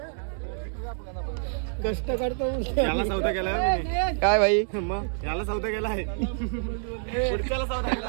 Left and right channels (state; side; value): silent; left; digital silence